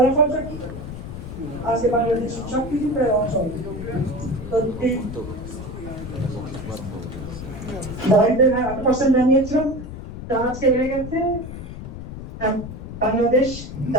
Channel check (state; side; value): noise; left; rumble, 10 dB below the sound